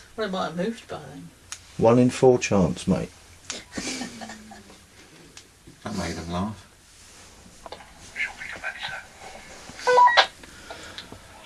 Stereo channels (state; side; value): identical; both; correlation 1.00